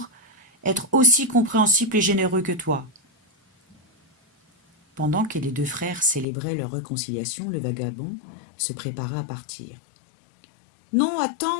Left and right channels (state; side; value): drops out; right; at 6.2 s